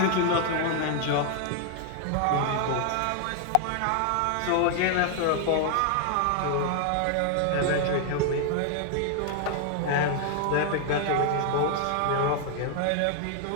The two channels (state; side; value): different; both; correlation 0.00